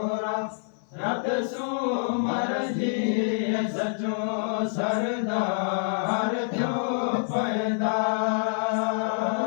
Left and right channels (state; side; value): silent; right; 60 dB below the other